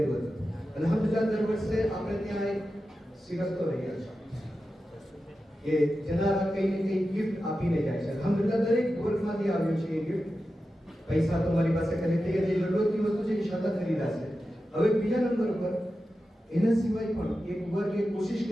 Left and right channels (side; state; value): both; normal; correlation 0.92